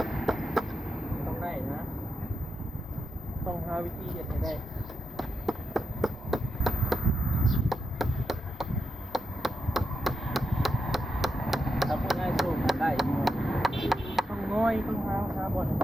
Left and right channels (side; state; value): both; normal; correlation 0.86